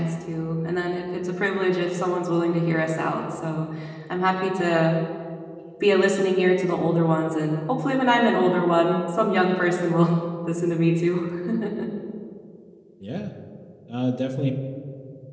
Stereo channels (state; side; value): identical; both; correlation 1.00